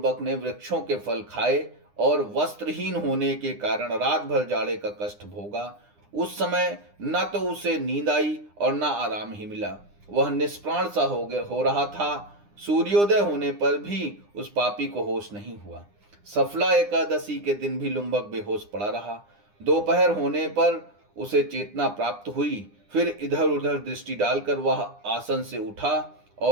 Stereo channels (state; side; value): late; left; 9.9 ms